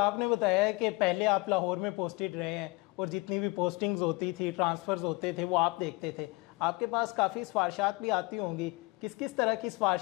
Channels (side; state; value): right; quieter; 25.3 dB